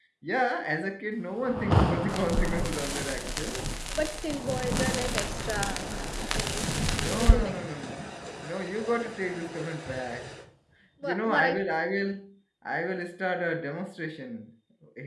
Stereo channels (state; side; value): identical; both; correlation 1.00